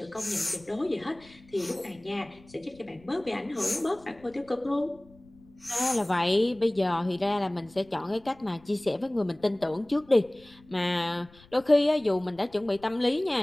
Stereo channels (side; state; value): left; noise; rumble, 26 dB below the sound